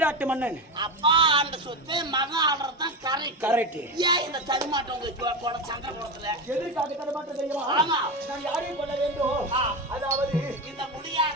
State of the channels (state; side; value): normal; both; correlation 0.18